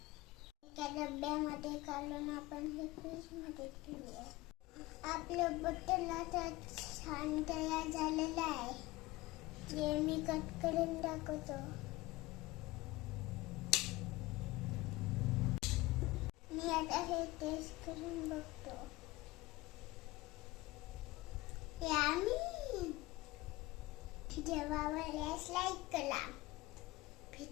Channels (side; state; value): right; quieter; 19.8 dB